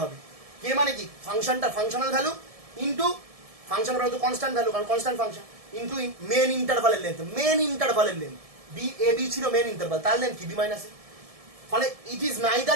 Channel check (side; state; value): left; late; 1.7 ms